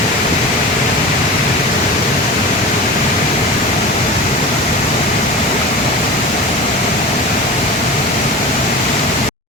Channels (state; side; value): normal; both; correlation 0.32